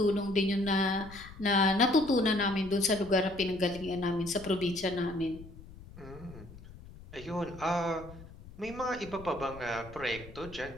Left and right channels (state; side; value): noise; left; rumble, 17 dB below the sound